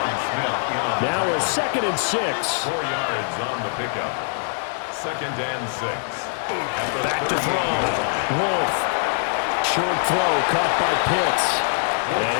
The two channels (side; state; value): right; silent; 63 dB below the other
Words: Now a 2nd and 6. 4 yards on the pickup. 2nd and 6. Back to throw. Wolf. Short throw caught by Pitts. And